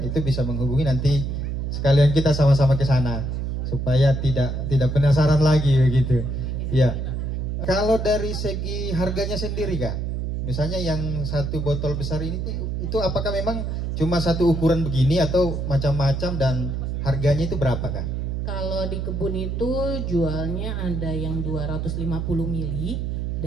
itu bisa menghubungi, nanti sekalian kita sama-sama ke sana supaya tidak penasaran lagi begitu. Ya. Kalau dari segi harganya sendiri Kak, misalnya yang satu botol besar ini itu apakah memang cuma satu ukuran begini atau macam-macam, dan harganya itu berapa Kak? Kalau di kebun itu jualnya ada yang 250 mili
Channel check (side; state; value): right; noise; hum, 2 dB below the sound